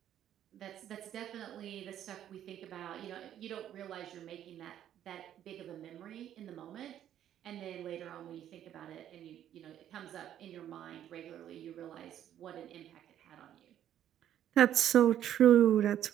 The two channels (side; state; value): left; quieter; 10.9 dB